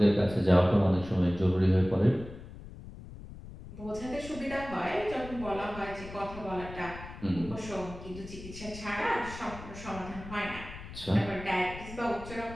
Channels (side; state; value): left; noise; rumble, 13 dB below the sound